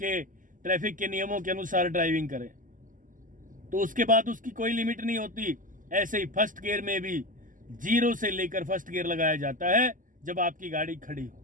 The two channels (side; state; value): left; late; 0.38 ms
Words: ट्रैफिक के नियमों के अनुसार ड्राइविंग करें। तो उसके बाद उसकी कोई लिमिट नहीं होती। ऐसे ही फर्स्ट गियर में भी 0 से लेकर फर्स्ट गियर लगाया जाता है जब आपकी गाड़ी खड़ी